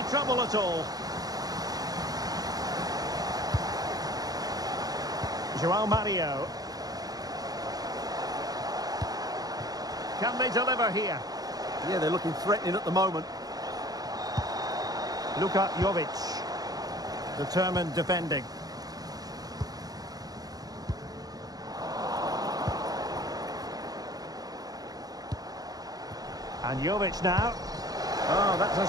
trouble at all. João Mario. Can they deliver here? Yeah, they're looking threatening at the moment. Luka Jovic. Determined defending. And Jovic now. Oh, that's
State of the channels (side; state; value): left; late; 0.18 ms